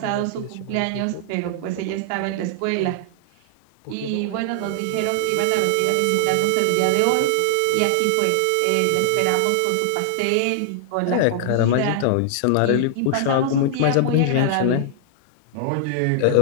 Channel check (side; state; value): both; different; correlation -0.01